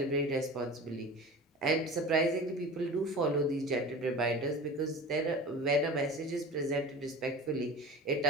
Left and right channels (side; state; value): both; normal; correlation 0.36